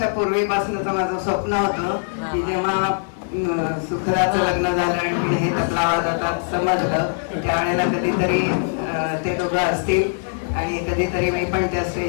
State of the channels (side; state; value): right; silent; 60 dB below the other